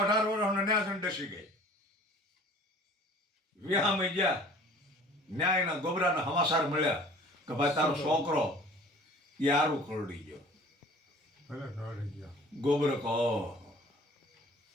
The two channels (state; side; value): normal; both; correlation 0.48